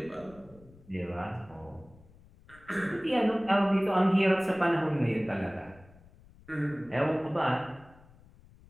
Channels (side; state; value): left; noise; rumble, 25 dB below the sound